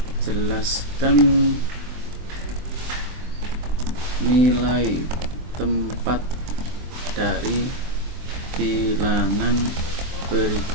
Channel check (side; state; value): left; late; 23 ms